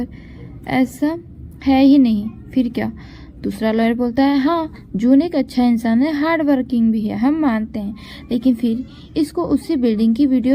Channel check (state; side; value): identical; both; correlation 1.00